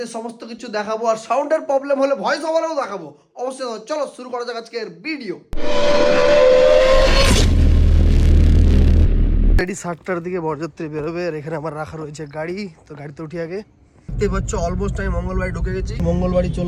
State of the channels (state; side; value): identical; both; correlation 1.00